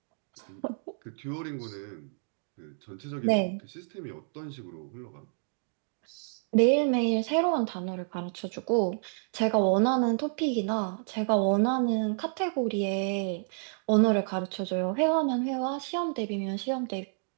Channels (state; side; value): silent; left; digital silence